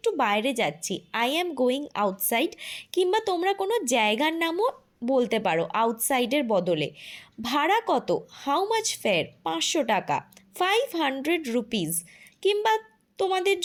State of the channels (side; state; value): both; identical; correlation 1.00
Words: বাইরে যাচ্ছি। I am going outside. কিংবা তোমরা কোনো জায়গার নামও বলতে পারো আউটসাইডের বদলে। ভাড়া কত? How much fair? 500 টাকা। 500 রুপিস। কিংবা তোমাদের